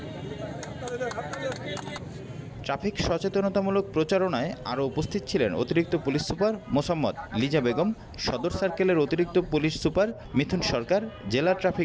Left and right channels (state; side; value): identical; both; correlation 1.00